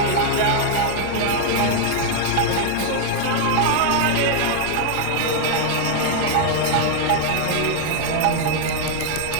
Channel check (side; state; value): both; different; correlation 0.00